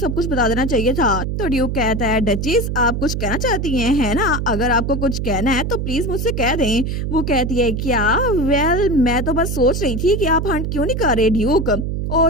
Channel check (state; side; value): noise; right; hum, 2 dB below the sound